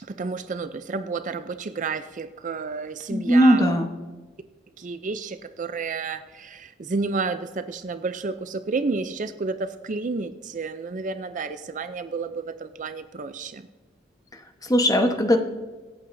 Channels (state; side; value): normal; both; correlation 0.64